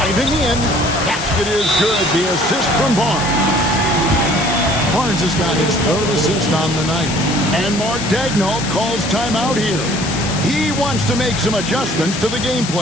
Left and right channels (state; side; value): noise; left; hiss, 6 dB below the sound